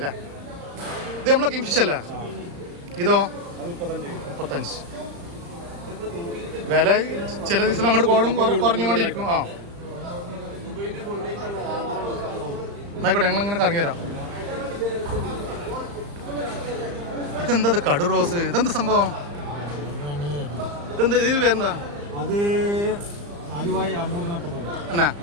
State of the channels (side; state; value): left; late; 35 ms